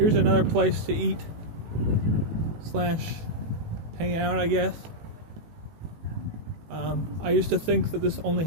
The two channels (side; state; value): left; late; 19 ms